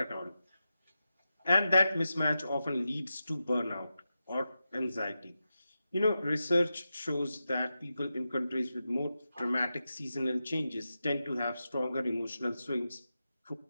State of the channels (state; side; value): inverted; both; correlation -0.90